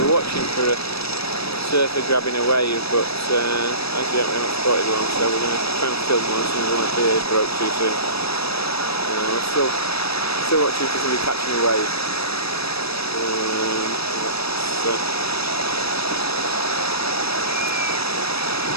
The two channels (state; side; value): late; right; 0.78 ms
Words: watching for a surfer grabbing a wave, but as yet we haven't spotted one, so we're going to try and film one as soon as one appears. Broke too soon. We're still watching for somebody catching a wave.